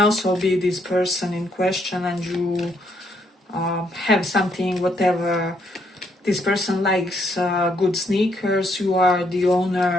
be this person in question, and you have something, whatever. This person likes good sneakers, you are the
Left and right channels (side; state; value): both; normal; correlation 0.73